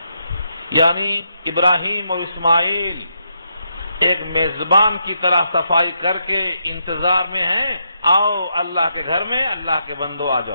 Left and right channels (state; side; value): inverted; both; correlation -0.80